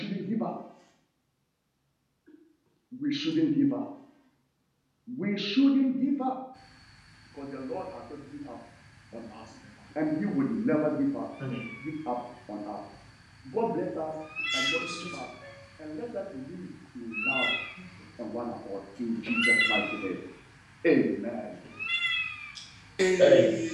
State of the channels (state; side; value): identical; both; correlation 1.00